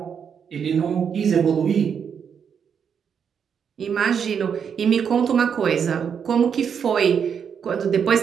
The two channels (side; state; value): left; quieter; 7.2 dB